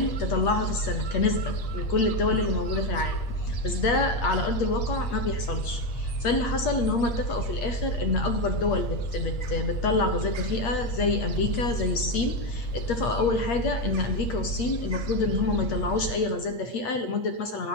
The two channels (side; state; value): right; late; 8.5 ms